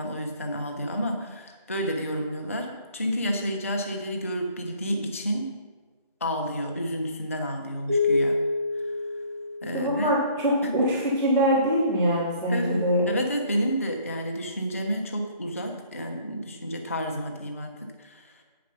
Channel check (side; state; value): both; inverted; correlation -0.59